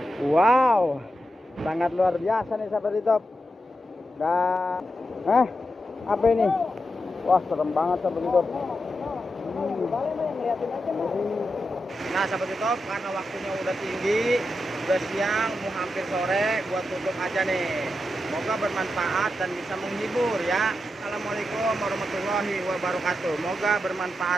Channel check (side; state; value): both; normal; correlation 0.87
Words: Wow, sangat luar biasa nih, sahabat YouTube. Dan apa ini? Wah, serem banget, sahabat YouTube. Nah, sahabat YouTube, karena waktunya udah tinggi, udah siang, mau hampir sore, buat tutup aja nih. Semoga bermanfaat dan bisa menghibur ya. Assalamualaikum warahmatullahi wabarakatuh. Semoga